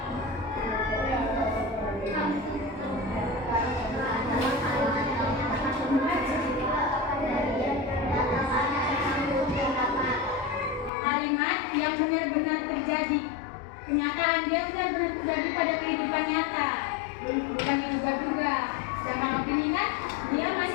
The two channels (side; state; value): right; drops out; at 10.9 s